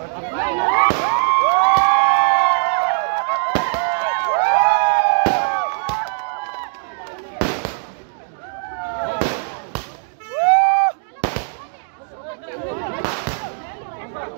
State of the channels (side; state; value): left; silent; digital silence